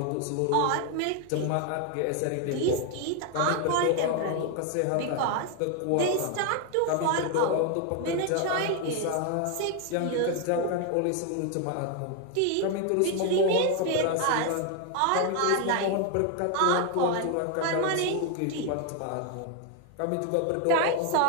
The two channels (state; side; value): different; both; correlation 0.01